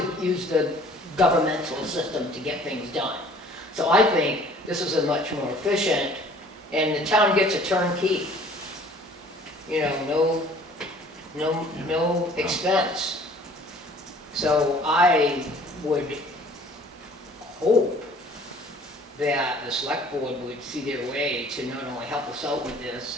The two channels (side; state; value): both; normal; correlation 0.53